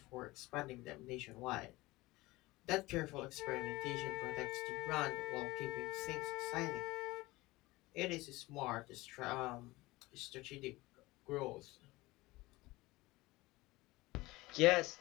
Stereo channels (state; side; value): quieter; right; 20.4 dB